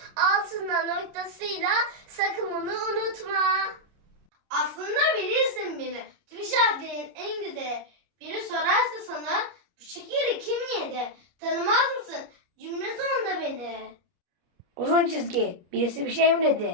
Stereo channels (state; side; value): late; left; 29 ms